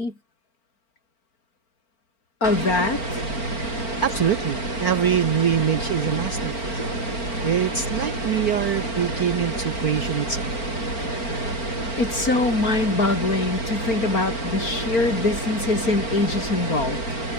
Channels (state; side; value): late; right; 4.4 ms